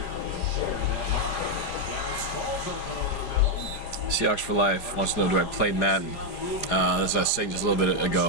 Share that mark. Seahawks for Life wants to know, do I play Madden? As I was saying just a little bit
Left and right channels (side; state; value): right; late; 4.8 ms